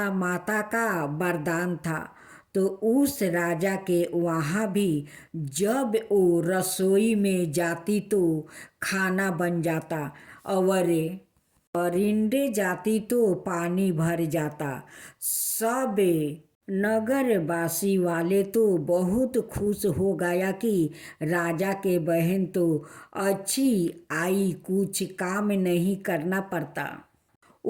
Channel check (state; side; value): identical; both; correlation 1.00